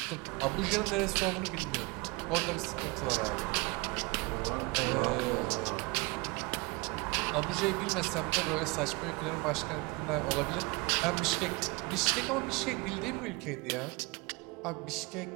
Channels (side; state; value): left; quieter; 26.9 dB